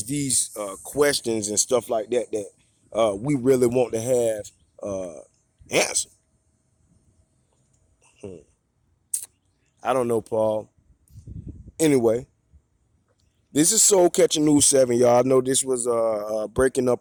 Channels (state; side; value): identical; both; correlation 1.00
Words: these questions and stuff like that that we really want to have answered. Hmm. I don't know, Paul. Anyway, this is Soul Catching News 7, y'all. I know this was breaking